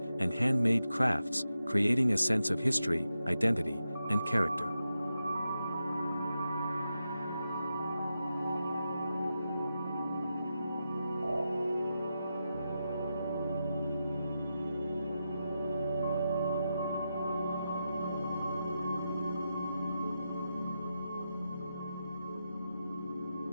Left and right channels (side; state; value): both; inverted; correlation -0.88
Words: and handmade crafts, creating a sense of history, identity, and character.